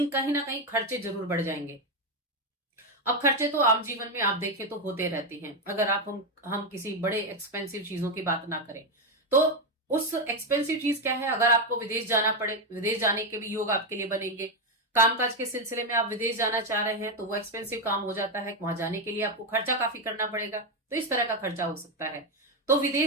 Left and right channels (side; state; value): both; normal; correlation 0.07